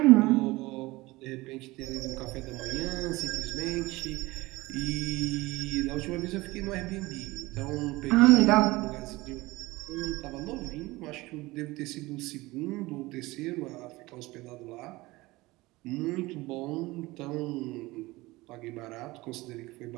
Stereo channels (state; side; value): quieter; left; 20.6 dB